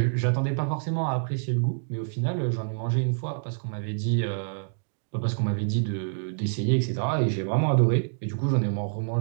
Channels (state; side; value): silent; left; digital silence